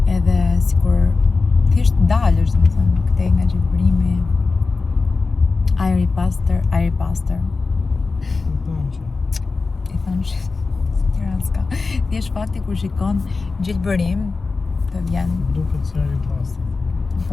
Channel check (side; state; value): right; quieter; 4.1 dB